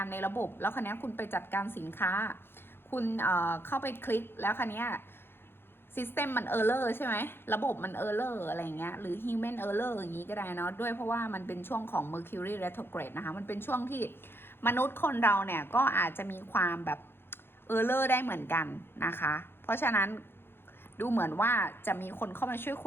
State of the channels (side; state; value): right; late; 0.11 ms